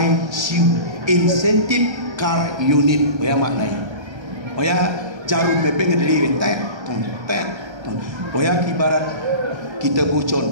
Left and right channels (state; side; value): late; left; 1.3 ms